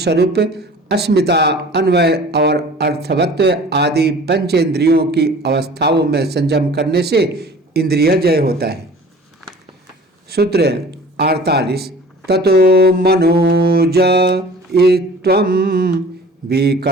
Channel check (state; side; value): normal; both; correlation 0.45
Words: अस्मिता, अन्वय और अर्थवत्व आदि पंचेंद्रियों की अवस्थाओं में संयम करने से इंद्रिय जय होता है। सूत्र 48। ततो मनोज इत्वं